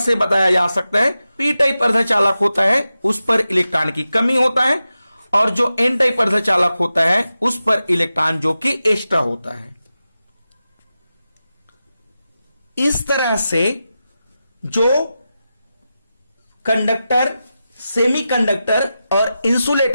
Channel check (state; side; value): inverted; both; correlation -0.92